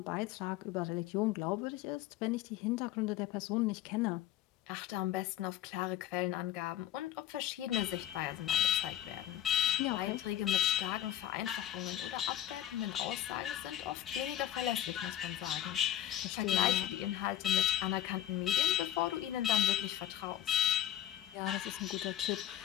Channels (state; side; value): quieter; right; 12.0 dB